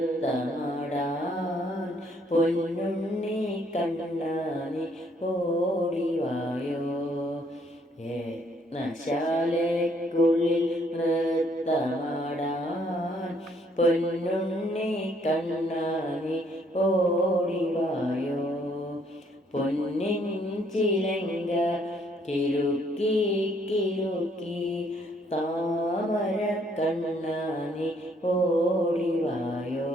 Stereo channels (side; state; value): both; normal; correlation 0.67